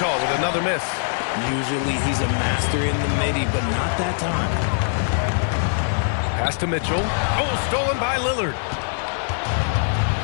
with another miss. Usually he's a master in the midi, but not that time. Pass to Mitchell. Oh, stolen by Lillard.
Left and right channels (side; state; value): right; silent; 58 dB below the other